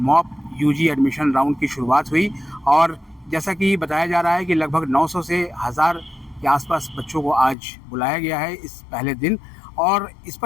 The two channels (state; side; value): drops out; right; at 7.6 s